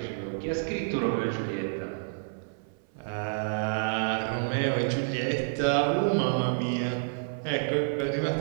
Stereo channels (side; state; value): left; silent; 56 dB below the other